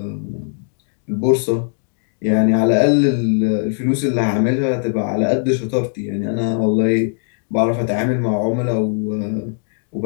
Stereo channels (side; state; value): right; silent; digital silence